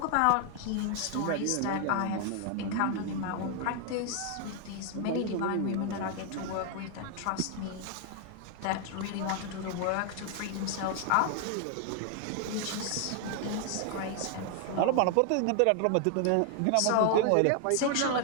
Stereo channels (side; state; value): both; different; correlation 0.00